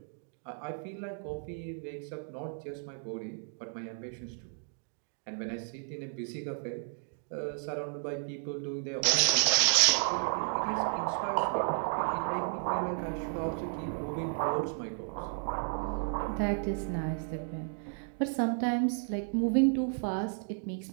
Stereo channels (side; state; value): left; silent; 56 dB below the other